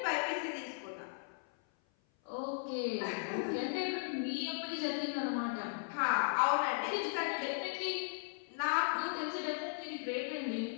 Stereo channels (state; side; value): silent; right; 53 dB below the other